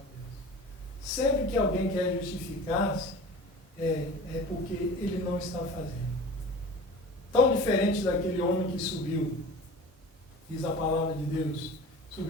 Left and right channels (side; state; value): both; normal; correlation 0.39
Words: Deus. Sempre que alguém quer justificar-se, é porque ele não está fazendo. tão diferente daquele homem que subiu. Diz a palavra de Deus.